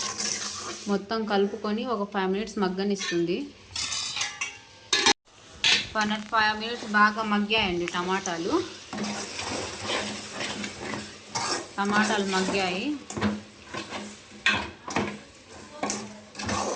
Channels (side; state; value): both; identical; correlation 1.00